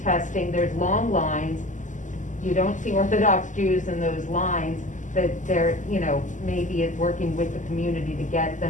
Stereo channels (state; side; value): late; right; 0.37 ms